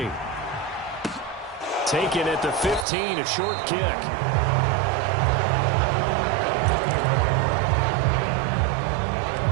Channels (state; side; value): drops out; left; at 2.9 s